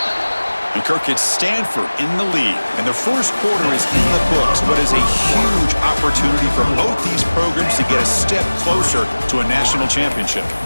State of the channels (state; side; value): inverted; both; correlation -1.00